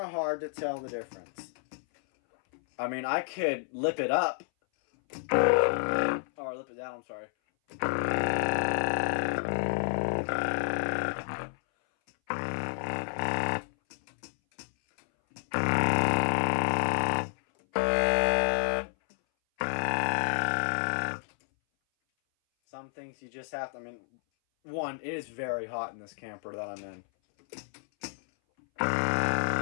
hard to tell the difference. I mean, I could lip it up. Or lip it down, I'm sorry. things you just have to, I mean, one, it is very hot in this camper that I'm in.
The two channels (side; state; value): right; silent; 58 dB below the other